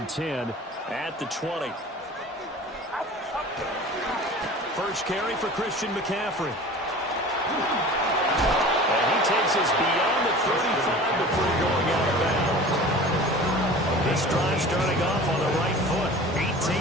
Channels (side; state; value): both; normal; correlation 0.40